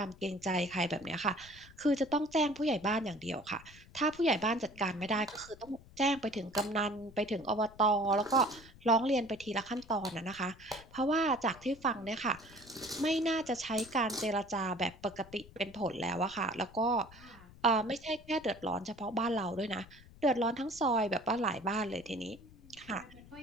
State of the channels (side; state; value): left; noise; rumble, 21 dB below the sound